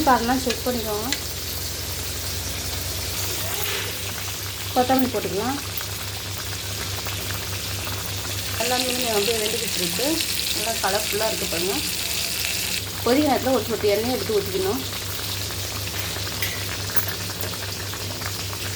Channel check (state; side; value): identical; both; correlation 1.00